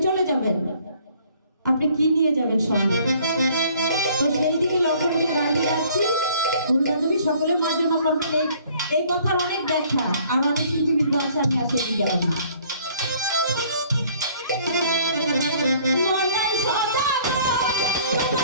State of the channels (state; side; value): inverted; both; correlation -0.58